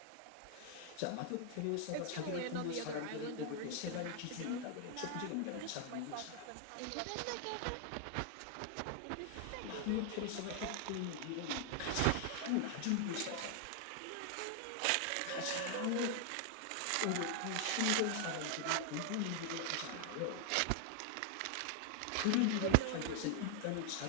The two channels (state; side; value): different; both; correlation 0.00